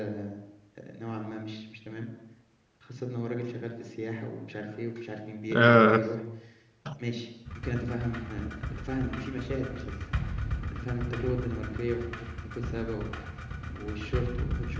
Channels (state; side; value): identical; both; correlation 1.00